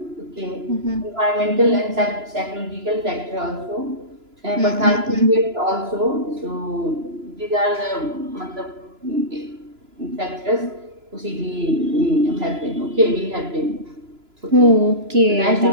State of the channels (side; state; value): left; late; 2.9 ms